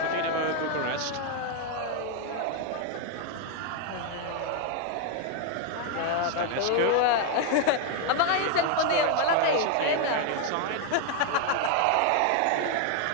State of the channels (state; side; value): different; both; correlation 0.01